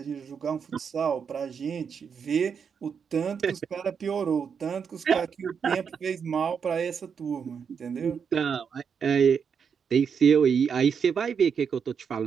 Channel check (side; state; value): left; quieter; 6.7 dB